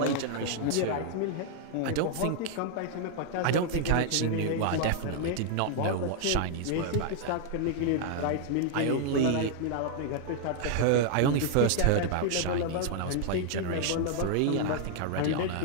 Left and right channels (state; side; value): different; both; correlation 0.00